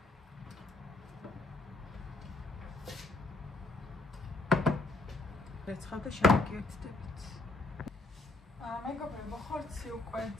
რეცხავდა შევიკეთდებით. მეგობრებო, ხორცი უკვე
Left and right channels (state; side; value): quieter; right; 3.1 dB